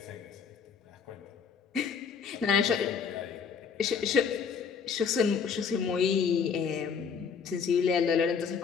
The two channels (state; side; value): quieter; right; 6.3 dB